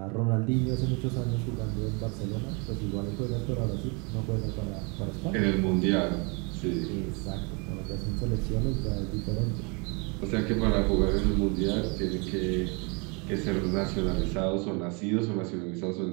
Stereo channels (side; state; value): left; quieter; 32.2 dB